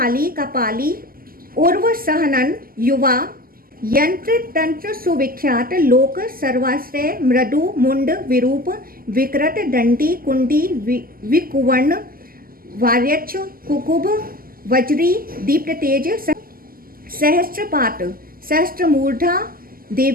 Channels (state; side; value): late; left; 0.42 ms